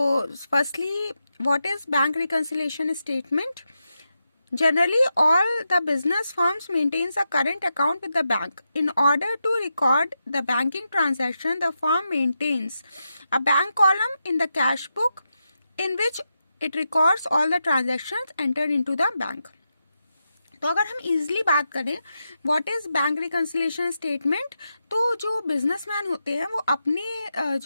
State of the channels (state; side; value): inverted; both; correlation -0.87